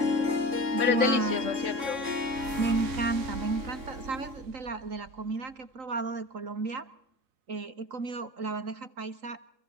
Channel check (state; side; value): late; left; 3.6 ms